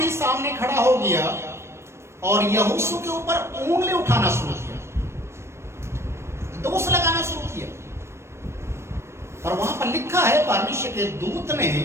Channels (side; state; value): left; late; 0.13 ms